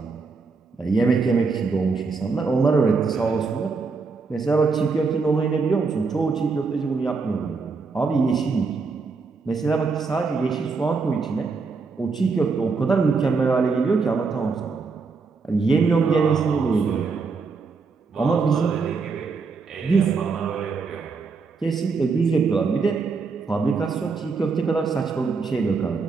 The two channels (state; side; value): quieter; left; 4.6 dB